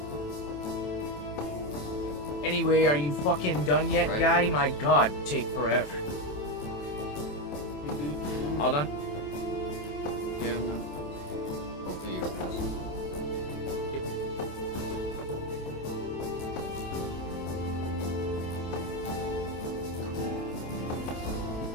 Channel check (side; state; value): right; late; 27 ms